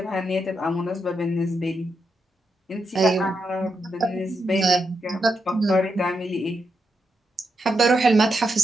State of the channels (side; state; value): both; normal; correlation 0.84